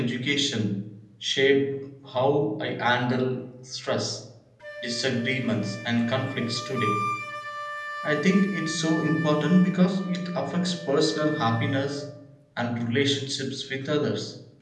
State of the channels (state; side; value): identical; both; correlation 1.00